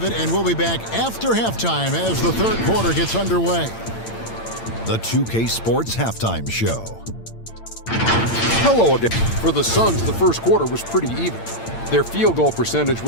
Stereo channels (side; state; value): right; late; 8.8 ms